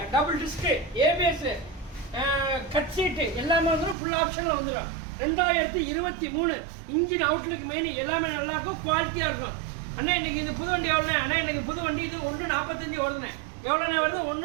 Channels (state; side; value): drops out; left; at 4.0 s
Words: டபுள் டிஸ்க்கு, ஏபிஎஸ், கட் சீட்டு எல்லாமே வந்துடும். ஃபுல் ஆப்ஷனில் வந்துடும். 2023 இன்ஜின் அவுட்லுக்கு மெயின் எல்லாமே நல்லாயிருக்கும், குவாலிட்டியாக இருக்கும். அண்ணா இன்னைக்கு இது புது வண்டி எவ்வளோண்ணே? அண்ணா இன்னைக்கு புது வண்டி இது 1.45 வருதுண்ணே. எவ்வளோண்ணே வருது?